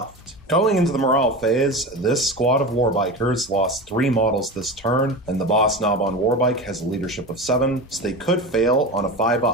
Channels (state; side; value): normal; both; correlation 0.27